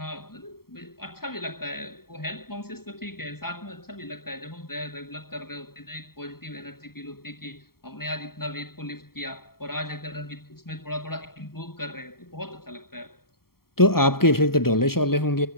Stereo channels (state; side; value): late; right; 0.93 ms